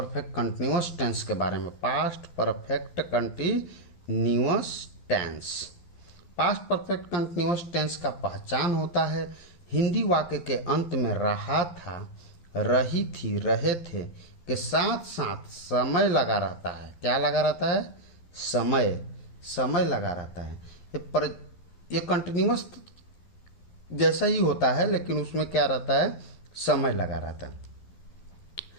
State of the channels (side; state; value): right; late; 12 ms